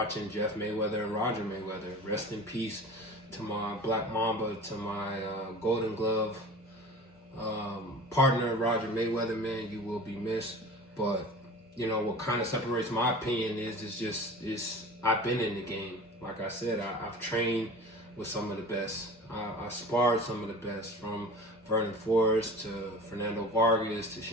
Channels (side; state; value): both; normal; correlation 0.38